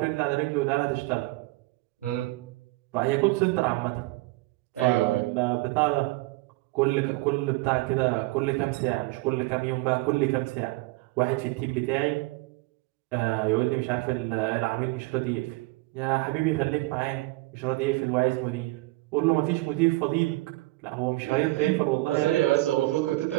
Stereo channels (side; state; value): left; quieter; 21.0 dB